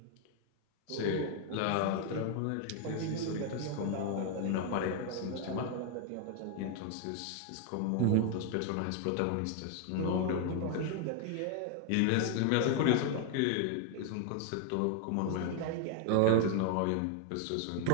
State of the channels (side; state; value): both; different; correlation 0.00